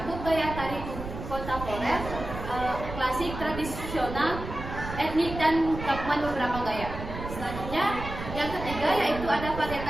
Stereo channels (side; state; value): right; noise; rumble, 8 dB below the sound